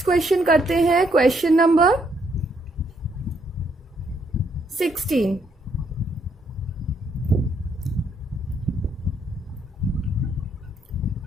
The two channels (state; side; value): normal; both; correlation 0.72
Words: क्वेश्चन करते हैं। Question number 16।